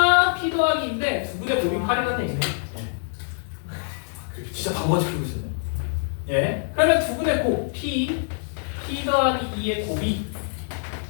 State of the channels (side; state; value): right; silent; digital silence